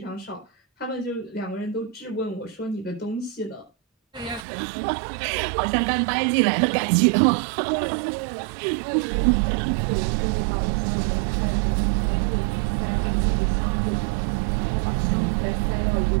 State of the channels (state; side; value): drops out; left; at 4.5 s